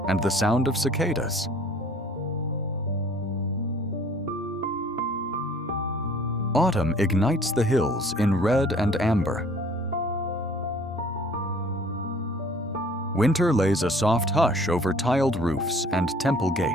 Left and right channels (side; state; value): both; normal; correlation 0.53